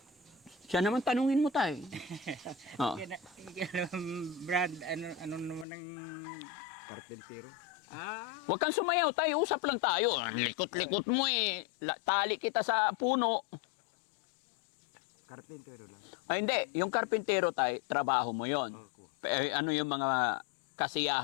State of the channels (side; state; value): right; drops out; at 5.7 s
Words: Siya naman tanungin mo, tay. Oo. Brad, ano naman ang... Karpentero. Huwag kang sumayaw, tay. Usap lang tayo. Ang likot-likot mo eh. Tali kita sa puno. Karpentero lang. Ay, hindi. Yung karpintero, tay, trabaho mo yon. Ako. Ano yung mga